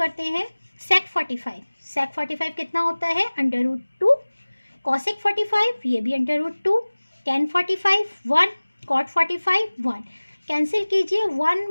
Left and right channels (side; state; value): both; inverted; correlation -1.00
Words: हैं। sec 45 कितना होता है √2, cosec 45 ये भी √2, tan 45 1, cot 45 1, कैंसिल कीजिए 1